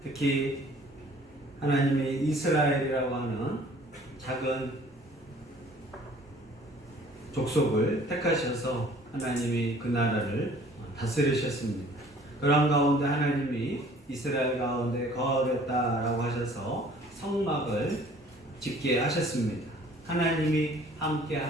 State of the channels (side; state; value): both; normal; correlation 0.53